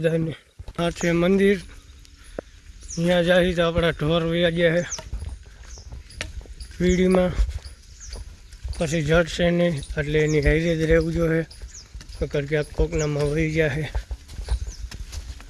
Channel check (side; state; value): both; identical; correlation 1.00